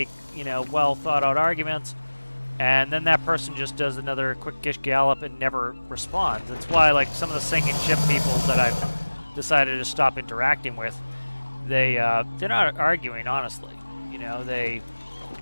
you know, well thought out arguments, and then that person just does another quick Gish Gallop and never responds. That's why, like, some of the sinking ship people that I've decided to stop interacting with, they're not arguing honestly. You know, they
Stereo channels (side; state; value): both; inverted; correlation -1.00